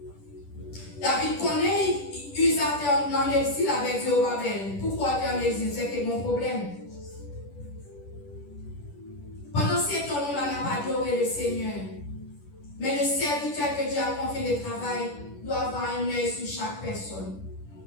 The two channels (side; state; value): right; late; 10 ms